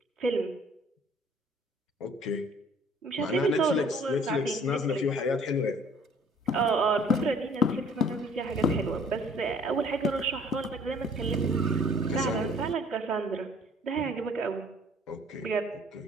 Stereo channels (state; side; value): normal; both; correlation 0.56